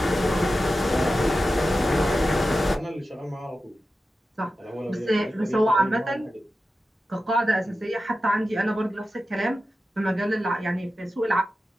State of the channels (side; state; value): both; normal; correlation 0.92